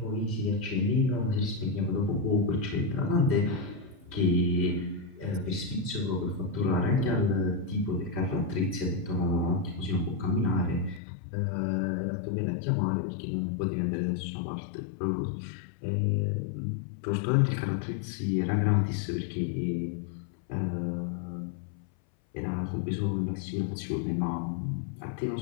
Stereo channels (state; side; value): drops out; right; at 11.0 s